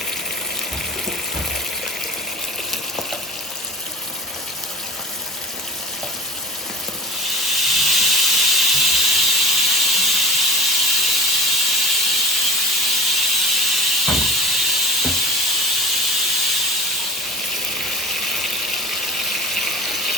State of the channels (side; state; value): both; normal; correlation 0.36